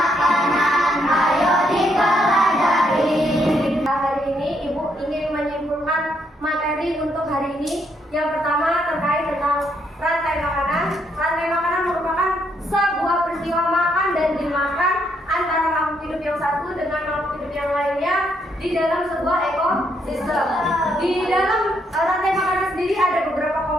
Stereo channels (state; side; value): normal; both; correlation 0.74